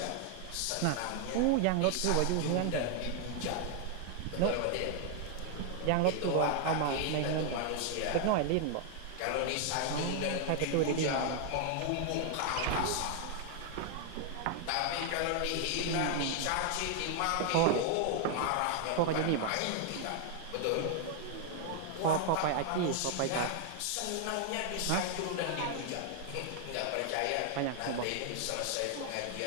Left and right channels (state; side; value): different; both; correlation 0.00